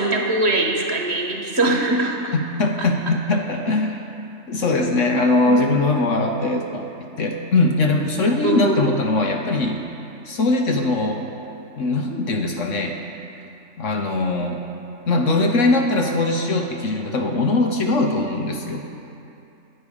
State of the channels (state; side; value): late; right; 3.6 ms